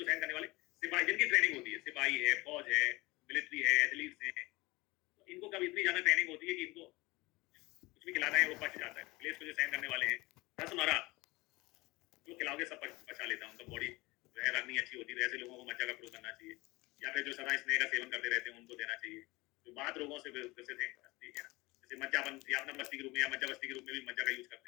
सहन करने वाले सिपाही, जिनकी ट्रेनिंग होती है, सिपाही है, फौज है, मिलिट्री है, एथलीट्स हैं, तो इनको कभी इतनी ज्यादा ट्रेनिंग होती है कि इनको कुछ भी खिलाना है वो पच जाता है। क्लेश को जो सहन करने वाले हैं, रसमरा जो खिलाओगे सब पचा लेता है, उनका बॉडी जो है रगनी अच्छी होती है। ऐसे लोगों को मज्जा का प्रयोग करना चाहिए, या फिर जो सदा स्नेह का सेवन करते रहते हैं उनको देना चाहिए। जो बात रोगों से ग्रसित हैं, ठीक है ना, जैसे मज्जाबन या अपना बस्ती के रूप में या मज्जा बस्ती के रूप में भी मज्जा का यूज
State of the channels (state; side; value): quieter; right; 22.3 dB